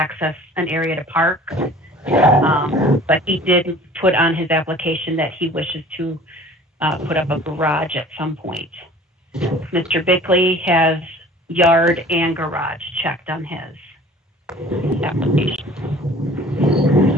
an area to park, but he did put on his application that he wishes to put up a garage at some point. Mr. Bickley has yard and garage checked on his application.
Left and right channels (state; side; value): normal; both; correlation 0.47